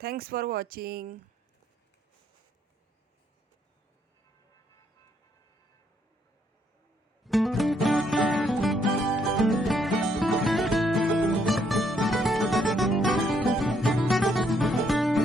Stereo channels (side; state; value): both; normal; correlation 0.72